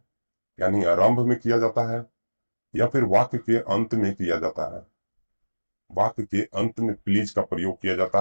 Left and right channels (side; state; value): both; inverted; correlation -1.00